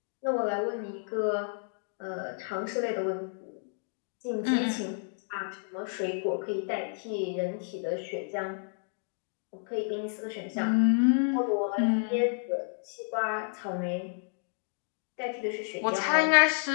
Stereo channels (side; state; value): right; silent; digital silence